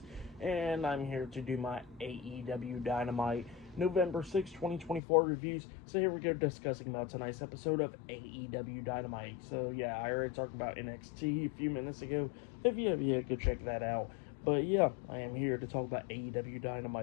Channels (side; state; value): right; drops out; at 5.0 s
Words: And I'm here to do my AEW Dynamite November 6, 2024 reviews. So here we go, discussing about tonight's episode of AEW Dynamite. So yeah, I already talked about NXT a few minutes ago. If you have yet, go check that out. But yeah, I am here to talk about AEW